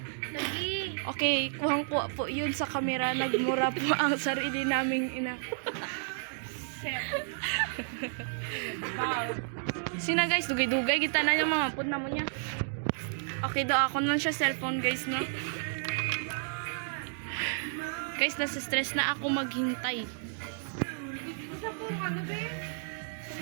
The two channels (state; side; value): silent; left; digital silence